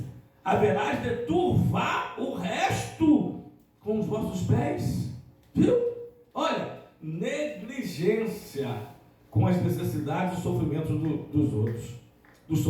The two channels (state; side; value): identical; both; correlation 1.00